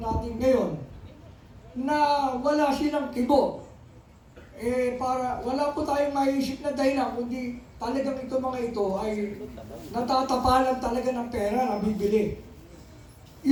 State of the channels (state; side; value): identical; both; correlation 1.00